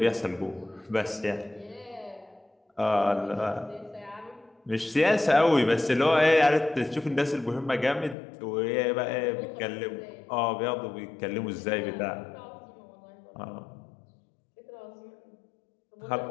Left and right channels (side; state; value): right; drops out; at 8.2 s